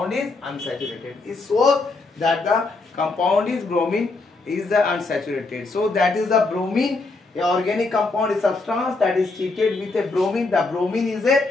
is unsaturated. It shows that the compound is bromine is the unsaturated. So that is the bromine. A organic compound is substance that is treated with a bromine. The bromine is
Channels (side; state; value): right; quieter; 3.5 dB